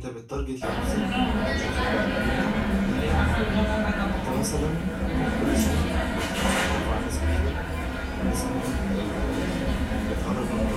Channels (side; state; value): both; identical; correlation 1.00